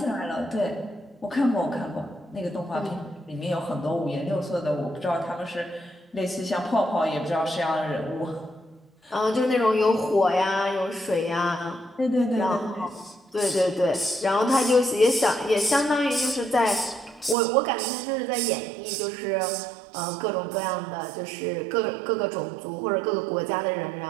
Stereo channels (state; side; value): drops out; left; at 17.4 s